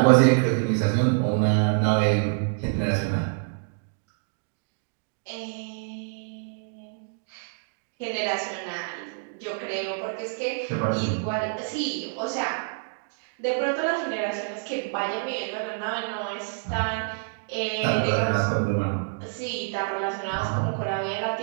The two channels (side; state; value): left; silent; digital silence